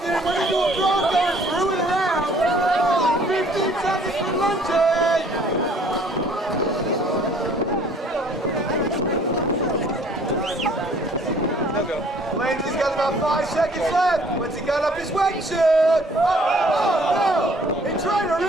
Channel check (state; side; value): normal; both; correlation 0.57